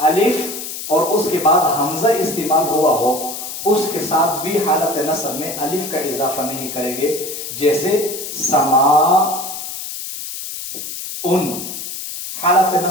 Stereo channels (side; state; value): left; noise; hiss, 8 dB below the sound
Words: और उसके बाद हमजा इस्तेमाल हुआ हो उसके साथ भी हालत नसब में अलिफ का इजाफा नहीं करेंगे। जैसे समा उन, हालत